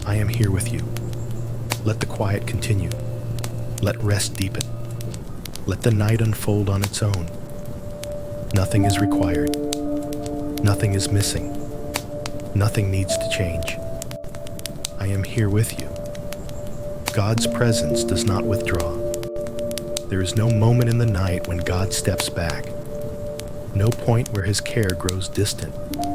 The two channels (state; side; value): identical; both; correlation 1.00